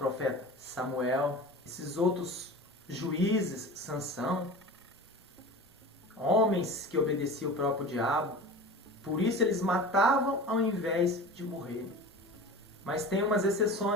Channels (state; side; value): normal; both; correlation 0.34